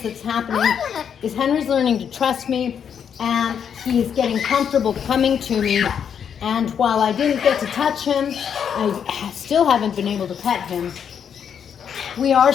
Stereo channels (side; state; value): right; quieter; 7.9 dB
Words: that's happening is Henry's learning to trust me, and he's getting comfortable coming to me. And while I didn't get to touch him, I still haven't been able to pet him. We are